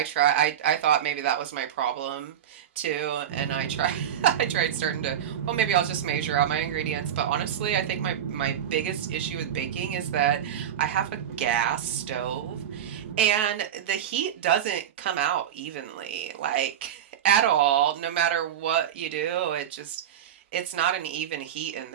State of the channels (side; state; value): left; quieter; 9.9 dB